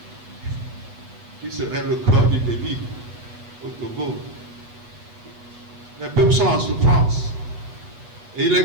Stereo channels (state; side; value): late; left; 8.4 ms